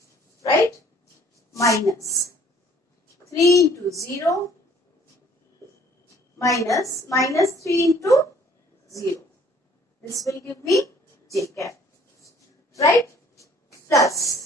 right? Minus 3 into 0 minus 3 into 0. This will give me j cap, right?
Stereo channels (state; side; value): normal; both; correlation 0.57